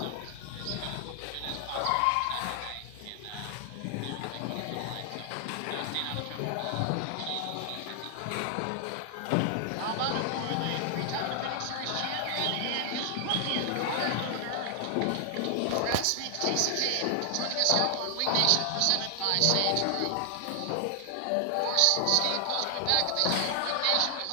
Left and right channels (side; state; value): both; different; correlation 0.00